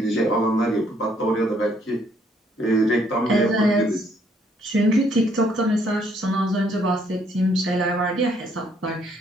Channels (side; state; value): both; normal; correlation 0.67